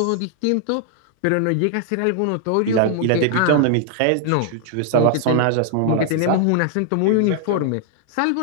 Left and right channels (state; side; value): different; both; correlation -0.01